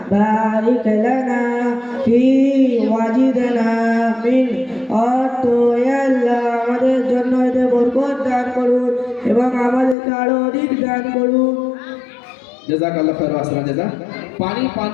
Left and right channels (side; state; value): right; drops out; at 10.0 s